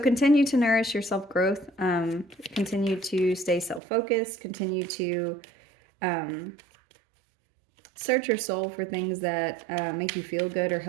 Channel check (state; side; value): drops out; left; at 3.8 s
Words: to nourish your self-growth. Continue to stay self-focused. Continue to search your soul for things that make you feel good or